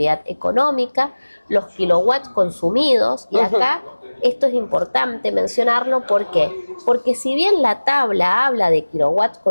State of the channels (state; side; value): inverted; both; correlation -1.00